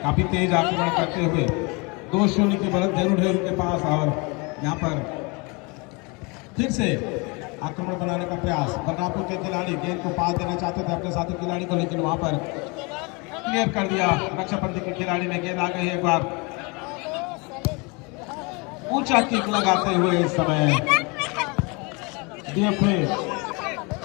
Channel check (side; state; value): right; quieter; 29.2 dB